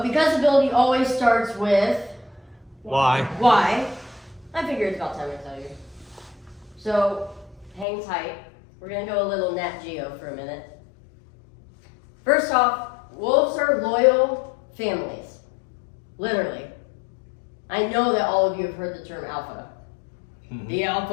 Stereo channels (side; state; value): right; drops out; at 7.9 s